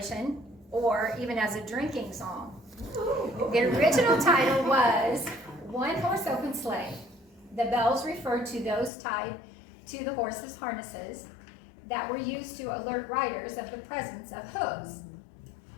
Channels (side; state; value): right; drops out; at 8.9 s